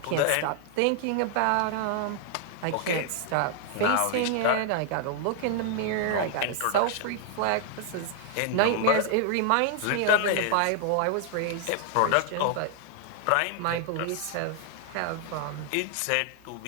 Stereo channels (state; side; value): different; both; correlation 0.00